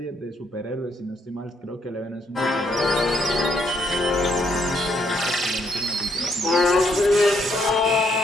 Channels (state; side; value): normal; both; correlation 0.72